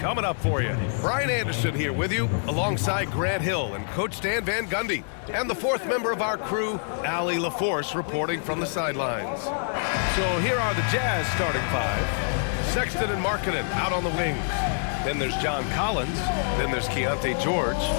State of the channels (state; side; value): silent; right; 61 dB below the other